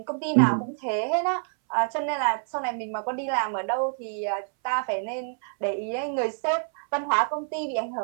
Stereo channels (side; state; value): left; silent; 60 dB below the other